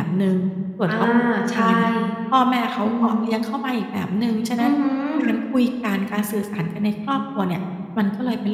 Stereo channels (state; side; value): identical; both; correlation 1.00